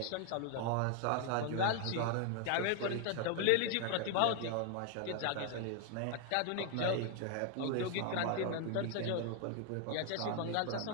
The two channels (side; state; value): both; different; correlation 0.00